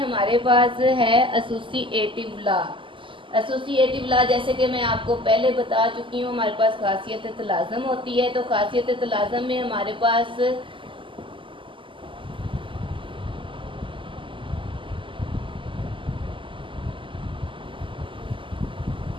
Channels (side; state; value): left; late; 0.25 ms